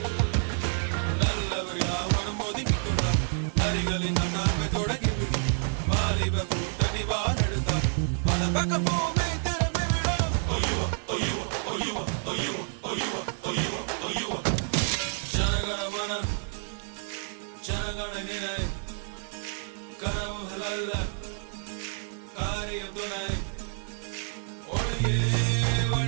நல்லவர் யாவனும் ஒதுக்கிக் கொண்டார் நரிகளின் நன்னாமை தொடங்கிவிடு வாலிப கூட்டணி வாழெடுத்தார் பல பக்க பூமி திரும்பி விடும் ஜனகணமன ஜனகணனினை கனவுகள் அல்ல காரியம் துணை ஒளியே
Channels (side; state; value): left; silent; 59 dB below the other